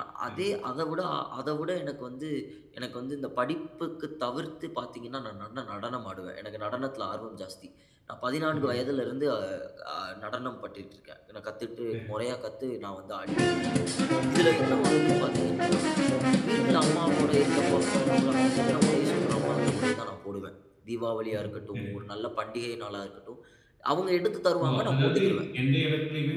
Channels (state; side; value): identical; both; correlation 1.00